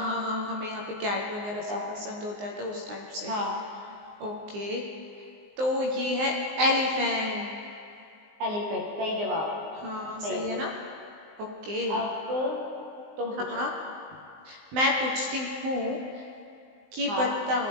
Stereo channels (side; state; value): left; late; 19 ms